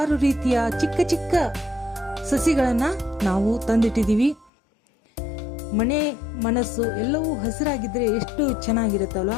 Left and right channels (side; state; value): right; drops out; at 4.5 s